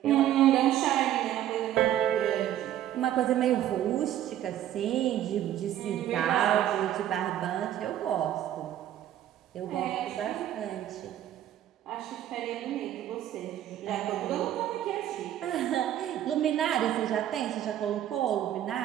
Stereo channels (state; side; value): quieter; left; 11.8 dB